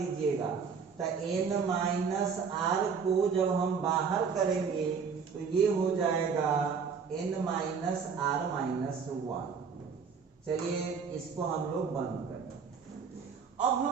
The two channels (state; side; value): quieter; left; 6.0 dB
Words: तो n माइनस आर को जब हम बाहर करेंगे तो ये हो जाएगा n minus R minus one. चलिए इसको हम लोग बंद करें। अब